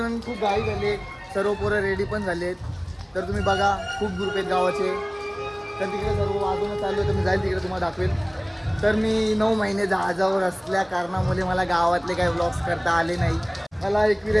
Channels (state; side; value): identical; both; correlation 1.00